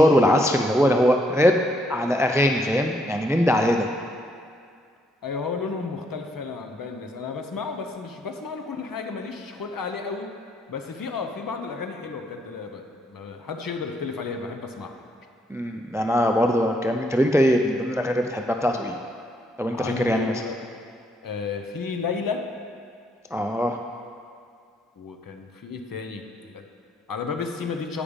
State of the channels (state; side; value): normal; both; correlation 0.72